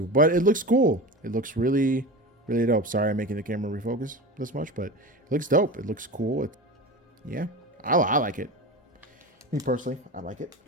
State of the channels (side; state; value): both; normal; correlation 0.29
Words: But it looks cool. It looks really, really dope. Sorry, I'm making the camera refocus this much, but it looks dope. It looks cool. Yeah, I like it. Me personally, I like it.